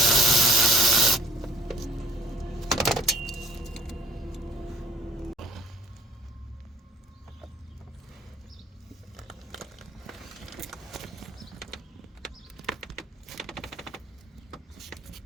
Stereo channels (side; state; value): both; normal; correlation 0.54